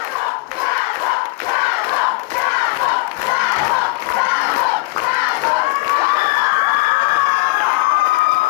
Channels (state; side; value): quieter; right; 23.1 dB